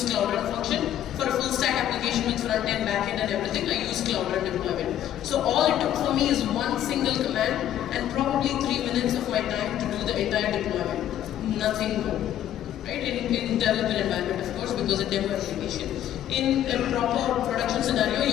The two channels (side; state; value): right; quieter; 11.5 dB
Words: Cloud Run function. For a full stack application with front end, back end and everything, I use Cloud Run deployment. So all it took for me is one single command and probably 3 minutes of my time to do the entire deployment. Nothing more. Right? In development environment, of course, because it's a demo application. In a proper production scenario,